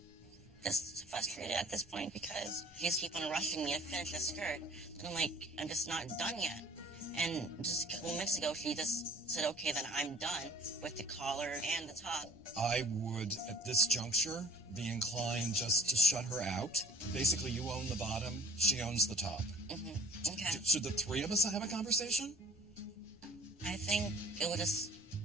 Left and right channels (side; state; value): left; noise; rumble, 24 dB below the sound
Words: Just frustrated at this point because she's keep on rushing me to finish the skirt. And I'm like, I'm just not done yet. And just a couple minutes ago, she just said, okay, then I'm done with the collar and the top. I would, at this juncture, be inclined just to shut her out. Basically, you own the bottom, she owns the top. Mm-hmm. Okay. Should the three of us have a conversation? I think it would just